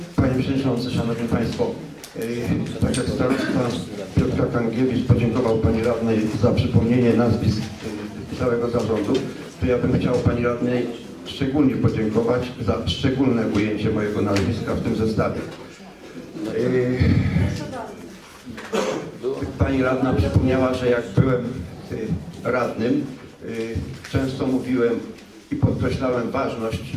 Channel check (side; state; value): both; identical; correlation 1.00